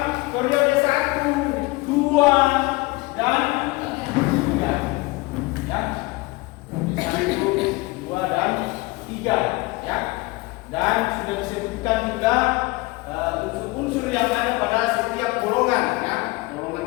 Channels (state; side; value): quieter; right; 23.3 dB